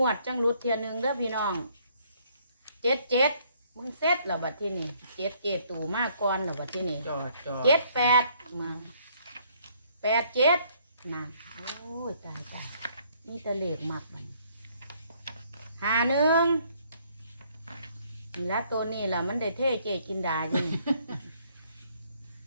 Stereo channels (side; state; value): both; inverted; correlation -0.65